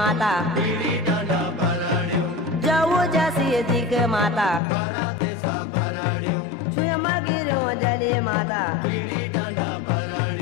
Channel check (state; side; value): drops out; right; at 4.6 s